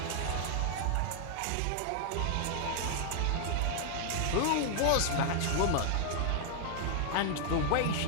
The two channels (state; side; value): different; both; correlation 0.00